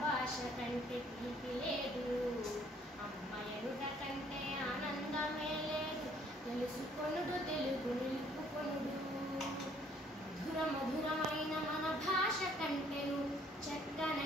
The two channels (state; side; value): normal; both; correlation 0.62